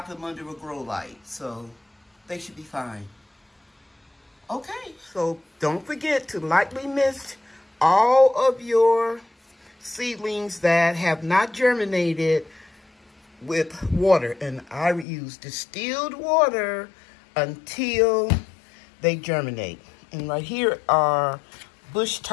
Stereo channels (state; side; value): drops out; right; at 15.1 s